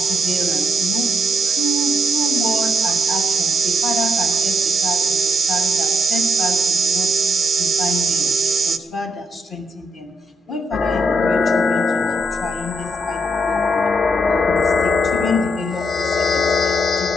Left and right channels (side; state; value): both; normal; correlation 0.79